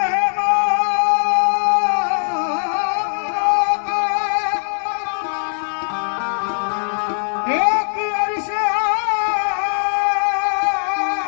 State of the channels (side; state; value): right; silent; 58 dB below the other